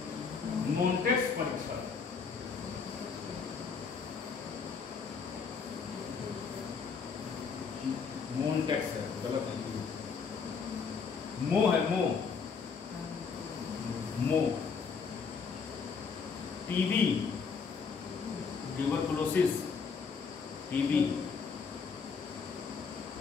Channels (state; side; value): quieter; right; 5.6 dB